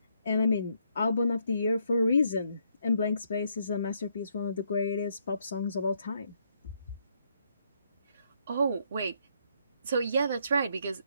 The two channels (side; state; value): both; inverted; correlation -0.73